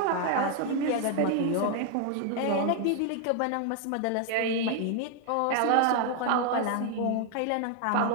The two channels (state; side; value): different; both; correlation 0.00